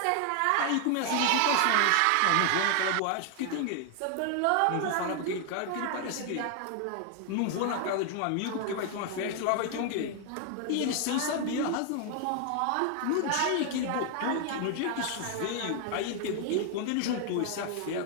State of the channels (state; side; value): different; both; correlation 0.00